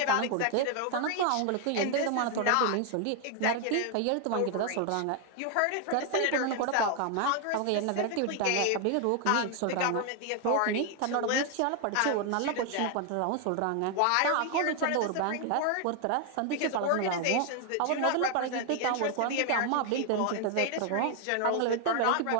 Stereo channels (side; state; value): both; different; correlation 0.00